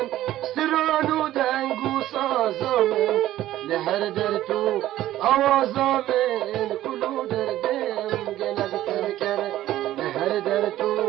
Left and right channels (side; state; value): left; quieter; 14.0 dB